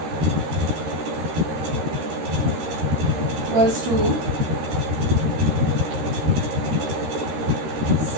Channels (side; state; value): left; late; 13 ms